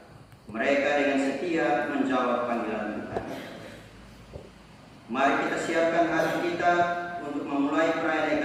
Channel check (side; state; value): both; identical; correlation 1.00